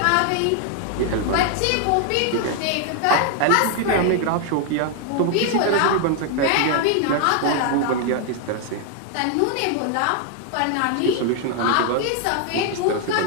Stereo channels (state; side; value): different; both; correlation 0.00